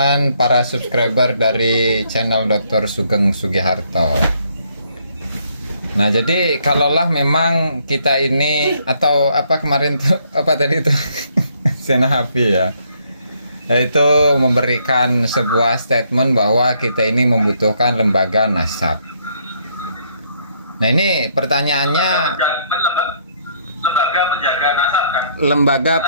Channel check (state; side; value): inverted; both; correlation -0.69